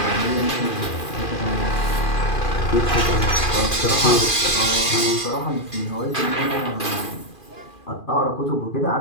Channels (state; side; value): late; right; 2.4 ms